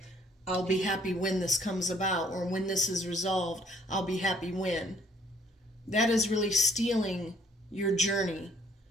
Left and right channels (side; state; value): both; normal; correlation 0.62